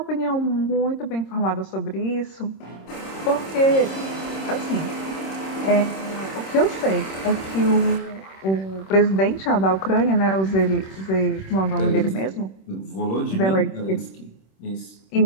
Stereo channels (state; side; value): late; right; 26 ms